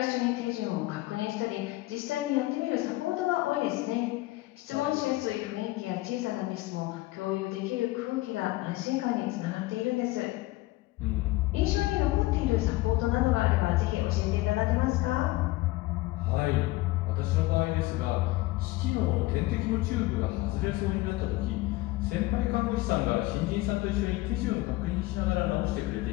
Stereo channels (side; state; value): right; quieter; 19.3 dB